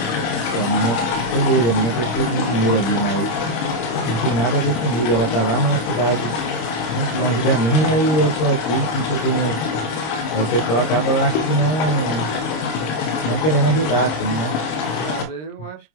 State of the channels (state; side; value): late; right; 26 ms